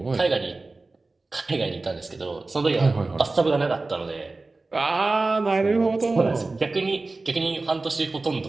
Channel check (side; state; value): left; quieter; 3.4 dB